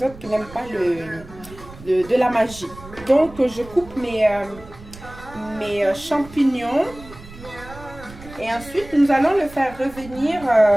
autres qui n'aiment pas de la magie. Donc je coupe mes champignons. Et ensuite, nous allons le faire revenir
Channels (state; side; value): noise; right; rumble, 18 dB below the sound